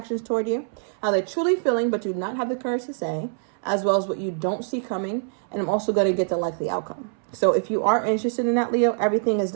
toward you, how they're truly feeling, but do not have the courage to say, as well as what you don't see coming. And I'm also going to get the likely outcome. So if you are interested in that, Leo, everything is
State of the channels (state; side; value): silent; left; 62 dB below the other